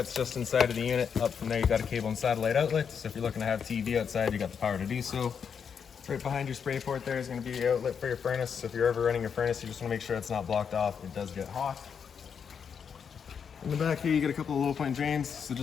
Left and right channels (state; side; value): quieter; right; 6.9 dB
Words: just inside of the unit. Up from there, you got a cable and satellite outlet. So if you're looking to have TV outside, you got the power to do so. Right behind your spray port there is going to be your outlet for your furnace. So if you're ever running your furnace, you just want to make sure it's not blocked off. It does get hot. In the back here, you get a couple of low point drains. So